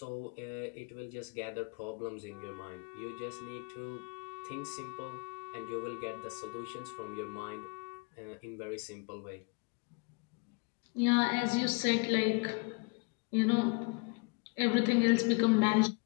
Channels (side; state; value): right; quieter; 32.2 dB